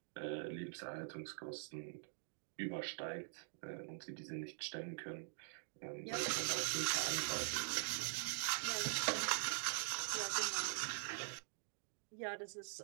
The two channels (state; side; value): silent; left; digital silence